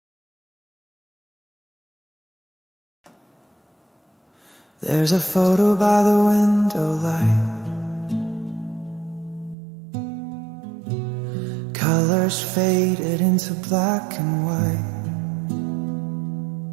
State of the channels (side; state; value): left; drops out; at 9.6 s